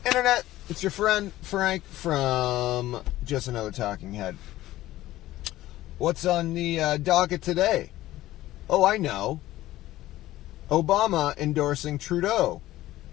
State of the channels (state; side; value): quieter; right; 15.7 dB